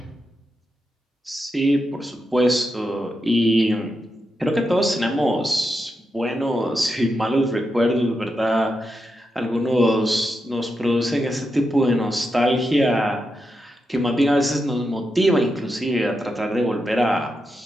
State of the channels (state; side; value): normal; both; correlation 0.86